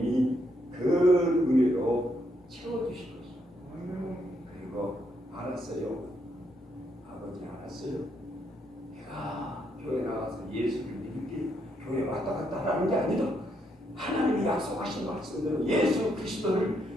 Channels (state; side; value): normal; both; correlation 0.76